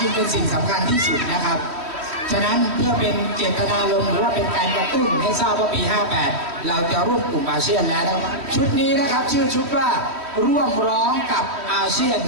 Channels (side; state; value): left; late; 3.1 ms